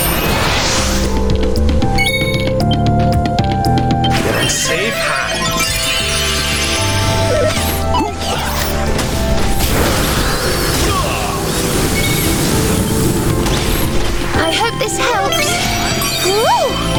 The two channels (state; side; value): identical; both; correlation 1.00